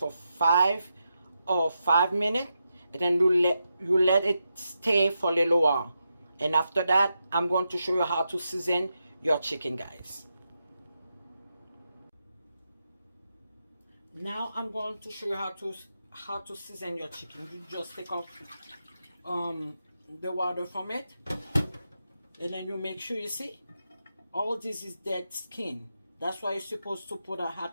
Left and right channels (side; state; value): both; inverted; correlation -0.86